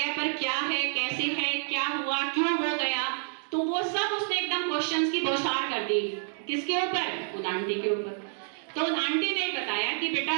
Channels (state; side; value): silent; left; 59 dB below the other